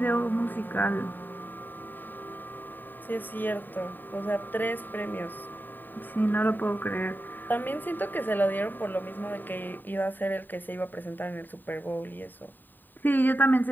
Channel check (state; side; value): late; right; 0.091 ms